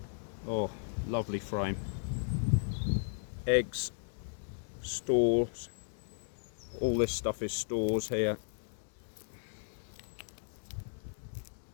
Oh, lovely frame. Eggs, stores. All this stuff is stores here.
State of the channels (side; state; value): right; silent; digital silence